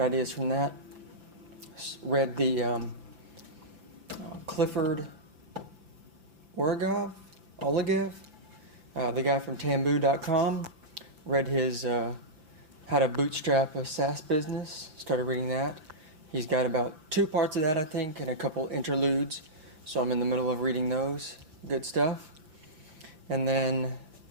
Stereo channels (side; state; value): left; late; 6.4 ms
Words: from that. Read the Clifford Olegev, the guy from Tamboo.com. Read his How to Bootstrap a SaaS Business, started reading that. He's got about 2 parts of that, I think, and a couple interludes. So I'm in the middle of reading those. Good stuff. And then